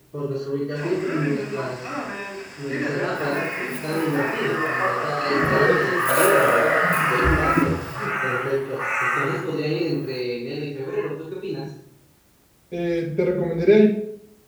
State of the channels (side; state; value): both; identical; correlation 1.00